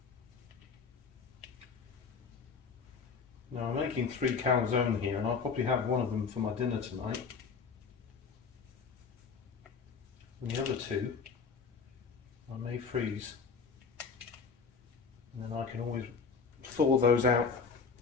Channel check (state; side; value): quieter; right; 5.3 dB